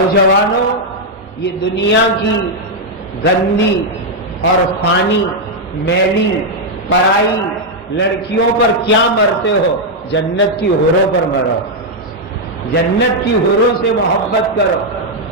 یہ دنیا کی گندی اور فانی میلی پرائی لڑکیوں پر کیا مرتے ہو؟ جنت کی حوروں پر مرو. جنت کی حوروں سے محبت کرو.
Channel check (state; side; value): normal; both; correlation -0.01